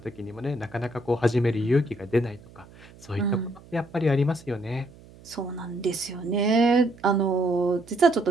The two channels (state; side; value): noise; right; hum, 22 dB below the sound